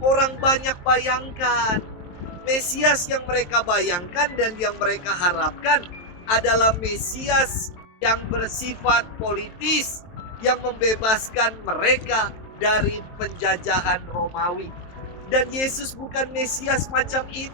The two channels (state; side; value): late; right; 23 ms